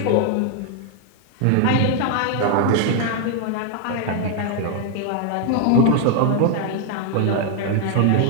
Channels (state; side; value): different; both; correlation 0.00